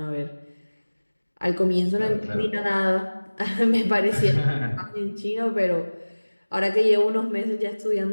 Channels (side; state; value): both; inverted; correlation -1.00